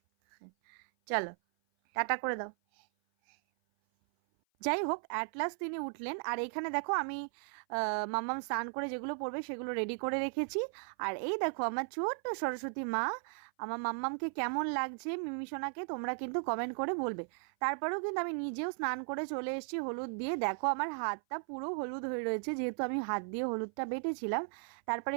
চলো, টাটা করে দাও। যাই হোক, অ্যাট লাস্ট তিনি উঠলেন। আর এইখানে দেখো আমি মাম্মাম স্নান করে যেগুলো পড়বে সেগুলো রেডি করে রেখেছি। আর এই দেখো আমার ছোট্ট সরস্বতী মা। আমার মাম্মামকে কেমন লাগছে মিমিসোনাকে তোমরা কিন্তু কমেন্ট করে বলবে। তারপরেও কিন্তু আমি নিজেও স্নান করে চলে এসেছি হলুদ দিয়ে। দেখো আমার হাতটা পুরো হলুদ হয়ে রয়েছে, যেহেতু আমি হাত দিয়ে হলুদটা বেটেছিলাম। তারপরে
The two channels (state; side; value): silent; left; 54 dB below the other